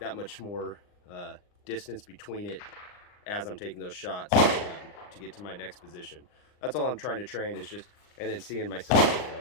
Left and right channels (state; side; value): late; right; 39 ms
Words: much more distance between it as I'm taking those shots to get to my next position. That's all I'm trying to train, is just, and then seeing myself